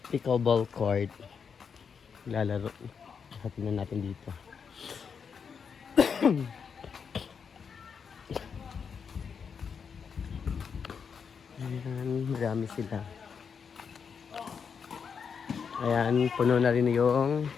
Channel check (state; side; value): quieter; right; 6.4 dB